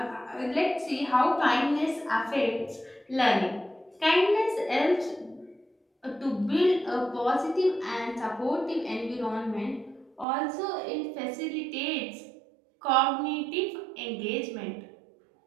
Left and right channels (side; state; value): left; drops out; at 10.2 s